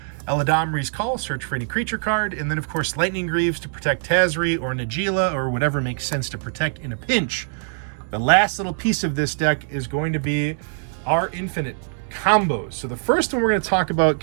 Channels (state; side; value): silent; left; 64 dB below the other